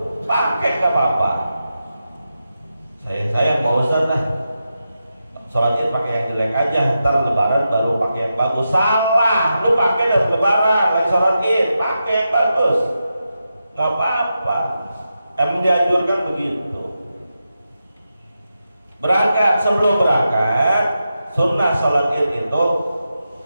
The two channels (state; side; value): inverted; both; correlation -0.89